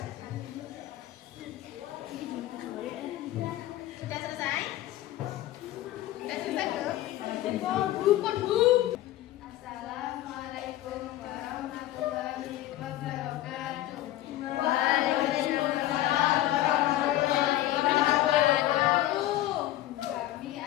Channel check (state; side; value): quieter; right; 14.5 dB